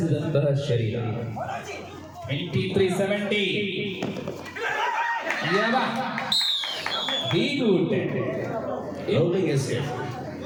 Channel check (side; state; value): both; identical; correlation 1.00